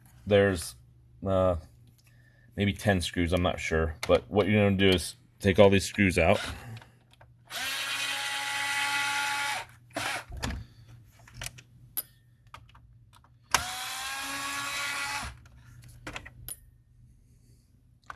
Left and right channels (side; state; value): both; identical; correlation 1.00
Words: There's maybe 10 screws, I'm not sure, but what you're going to do is take all these screws out.